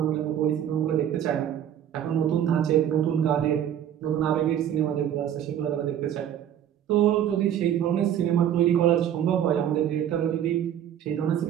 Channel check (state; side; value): quieter; left; 10.2 dB